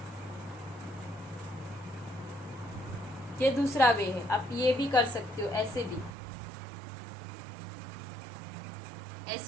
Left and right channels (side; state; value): left; drops out; at 6.1 s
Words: ये दूसरा वे है। आप ये भी कर सकते हो, ऐसे भी।